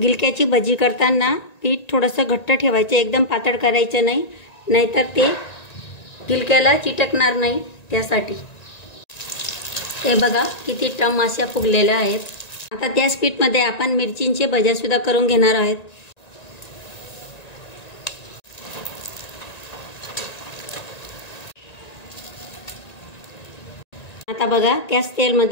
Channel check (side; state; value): right; late; 1.9 ms